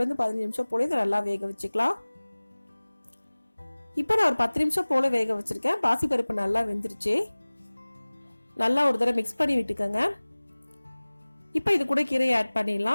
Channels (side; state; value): both; inverted; correlation -1.00